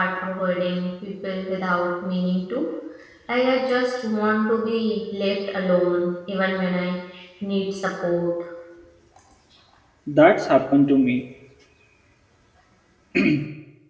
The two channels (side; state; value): both; identical; correlation 1.00